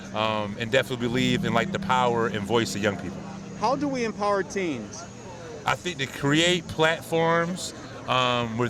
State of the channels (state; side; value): identical; both; correlation 1.00